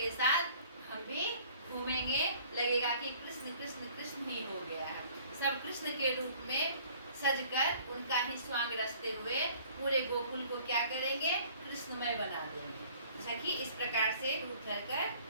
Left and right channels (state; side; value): inverted; both; correlation -0.53